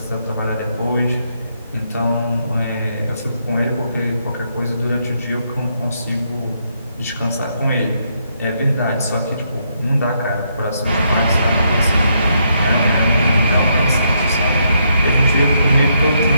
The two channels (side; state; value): both; inverted; correlation -0.76